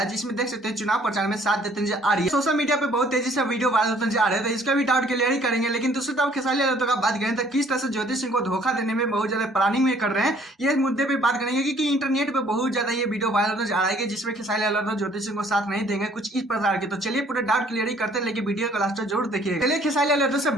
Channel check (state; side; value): normal; both; correlation 0.59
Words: है, जिसमें देख सकते हैं चुनाव प्रचार में साथ देते नजर आ रही है। सोशल मीडिया पे बहुत तेजी से वीडियो वायरल होता नजर आ रहा है, तो इसका भी डाउट क्लियर ही करेंगे। लेकिन दूसरी तरफ खेसारी लाल यादव का बात करें तो किस तरह से ज्योति सिंह को धोखा देने में बहुत ज्यादा प्लानिंग में कर रहे हैं, ये मुद्दे पे बात करेंगे। क्योंकि इंटरनेट पे बहुत ज्यादा ये वीडियो वायरल नजर आ रहा है जिसमें खेसारी लाल यादव ज्योति सिंह को साथ नहीं देंगे, कुछ इस प्रकार के। तो चलिए पूरे डाउट क्लियर ही करते हैं, लेकिन वीडियो को लास्ट तक जरूर देखिए। चलिए खेसारी लाल यादव से